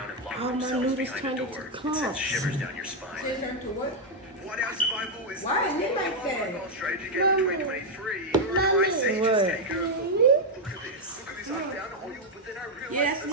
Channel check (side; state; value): both; normal; correlation 0.01